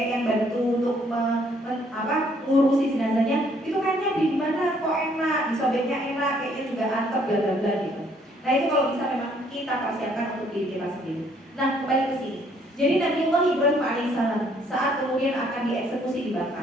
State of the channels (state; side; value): normal; both; correlation 0.65